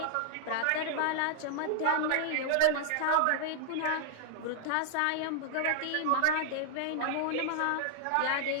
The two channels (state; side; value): different; both; correlation -0.01